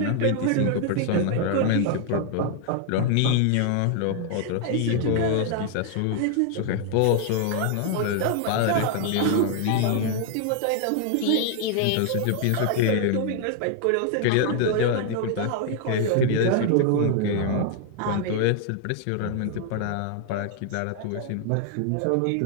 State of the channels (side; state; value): both; different; correlation 0.00